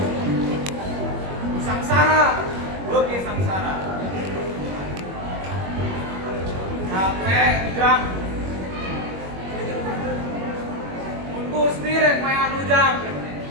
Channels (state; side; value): late; left; 21 ms